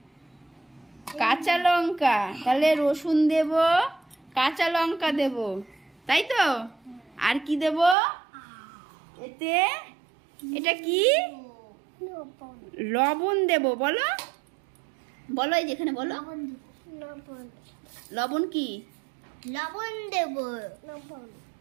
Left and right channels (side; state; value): left; drops out; at 8.0 s